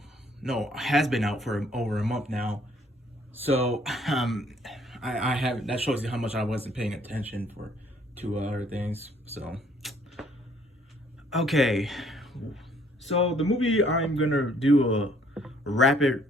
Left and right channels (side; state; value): both; normal; correlation 0.63